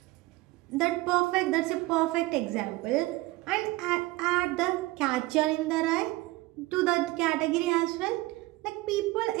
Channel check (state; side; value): quieter; left; 20.4 dB